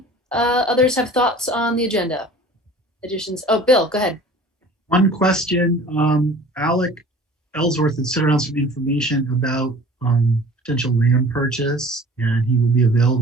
others have thoughts on the agenda? Additions? Oh, Bill, go ahead. One question. Alec Ellsworth had sent around some information about potential land purchase, and he will be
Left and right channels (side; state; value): both; normal; correlation 0.45